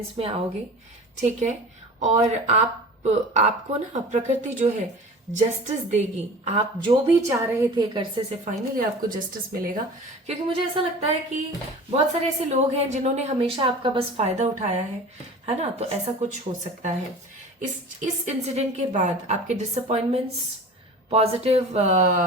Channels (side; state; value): both; normal; correlation 0.39